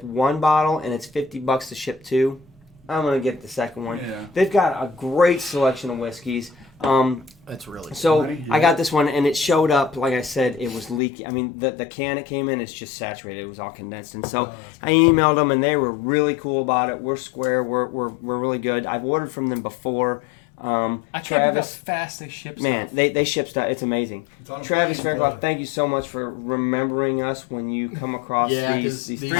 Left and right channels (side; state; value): right; drops out; at 11.0 s